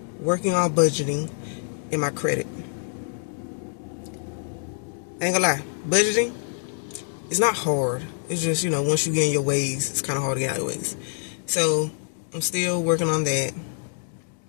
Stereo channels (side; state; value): right; silent; digital silence